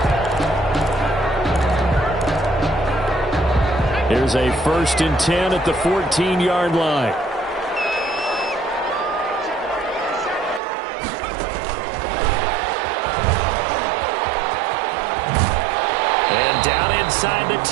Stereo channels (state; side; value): drops out; left; at 10.6 s